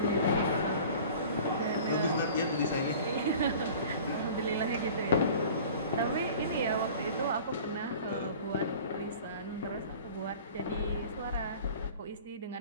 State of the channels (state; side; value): inverted; both; correlation -0.43